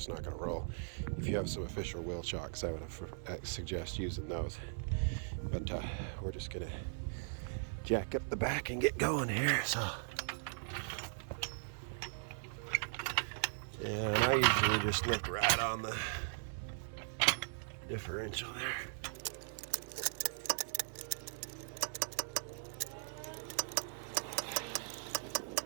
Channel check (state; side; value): silent; left; digital silence